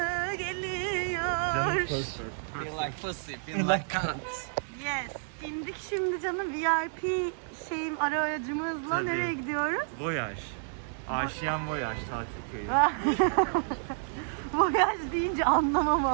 geliyor. Feel like pussy, feel like cunt. Yes. İndik şimdi canım, VIP aracımızla. Tabii. Nereye gidiyoruz? Voyaj. Aşiyan Voyaj tatil köyü. Voyaj deyince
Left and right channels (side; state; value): left; silent; digital silence